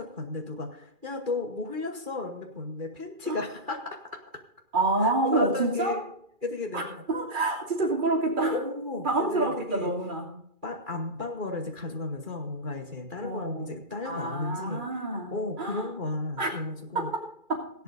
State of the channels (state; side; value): late; left; 2.4 ms